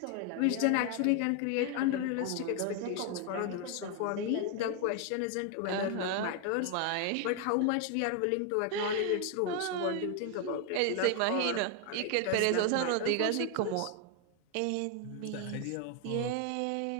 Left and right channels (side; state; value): both; different; correlation 0.00